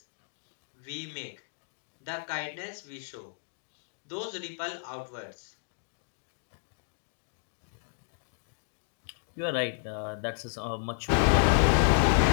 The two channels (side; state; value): right; silent; digital silence